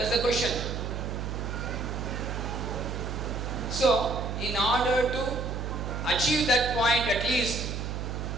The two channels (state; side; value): noise; right; hum, 4 dB below the sound